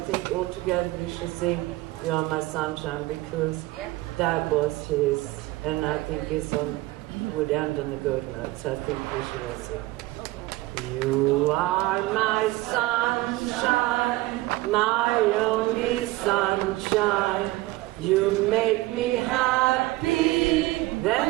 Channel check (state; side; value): quieter; left; 18.9 dB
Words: think all together we should sing You Are My Sunshine, because that was his, and I think would end on a good note, so I think we should all sing. You are my sunshine, my only sunshine. You make me happy,